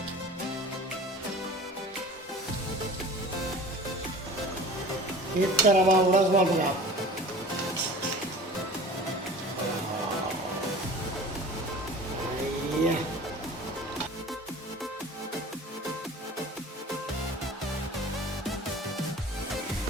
इस तरह उड़स मार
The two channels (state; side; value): normal; both; correlation 0.41